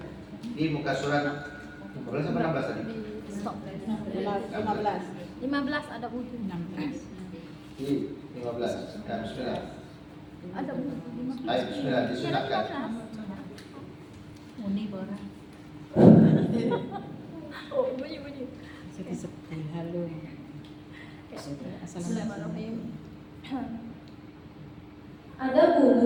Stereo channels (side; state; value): both; identical; correlation 1.00